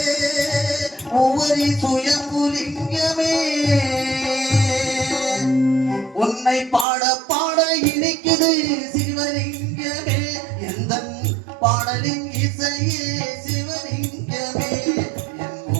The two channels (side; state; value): left; drops out; at 6.9 s